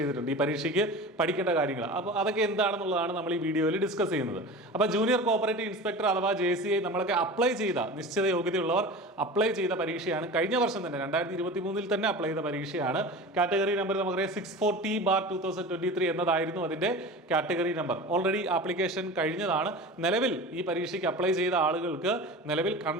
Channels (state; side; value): normal; both; correlation 0.33